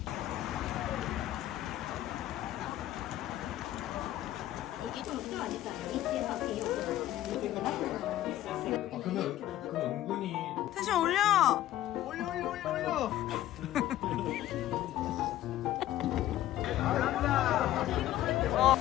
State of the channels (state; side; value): quieter; right; 13.7 dB